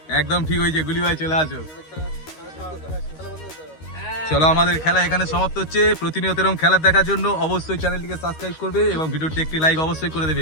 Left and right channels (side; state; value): right; late; 13 ms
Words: একদম ঠিক হয়েছে, গুলি ভাই চলে আসো। চলো আমাদের খেলা এখানে সমাপ্ত হচ্ছে। প্রতিনিয়ত এরকম খেলা দেখার জন্য অবশ্যই চ্যানেলটিকে সাবস্ক্রাইব করবে এবং ভিডিওটি একটি লাইক অবশ্যই করে